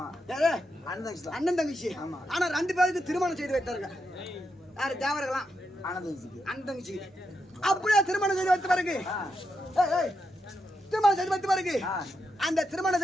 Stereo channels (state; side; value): normal; both; correlation 0.84